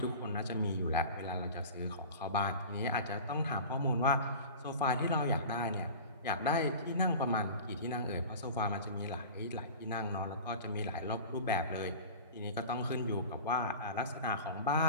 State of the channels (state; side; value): inverted; both; correlation -0.36